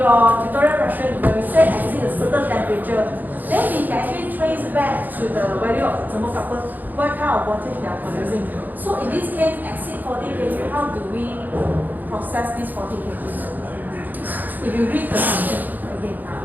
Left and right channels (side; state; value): left; late; 0.085 ms